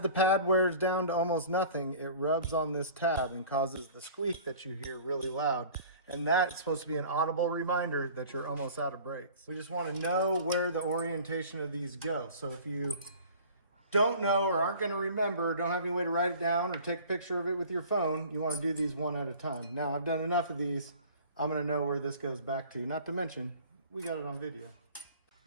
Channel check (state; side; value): inverted; both; correlation -0.45